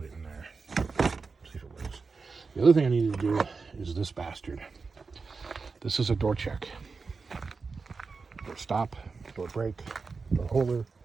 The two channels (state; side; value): quieter; left; 4.6 dB